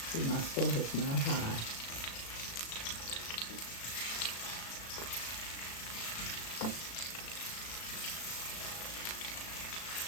See, my stove is not high.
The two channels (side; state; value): right; late; 36 ms